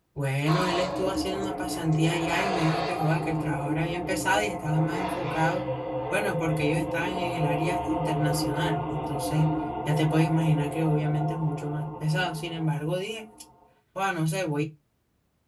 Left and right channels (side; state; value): both; identical; correlation 1.00